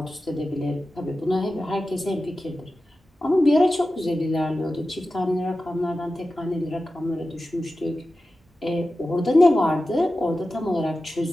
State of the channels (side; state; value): both; normal; correlation 0.94